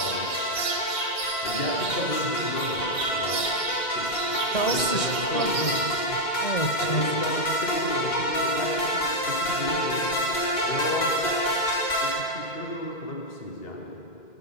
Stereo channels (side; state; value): right; late; 2.1 ms